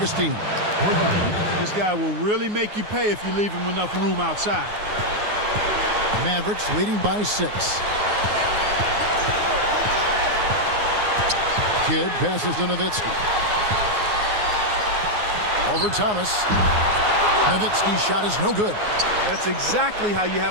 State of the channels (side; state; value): left; late; 9.6 ms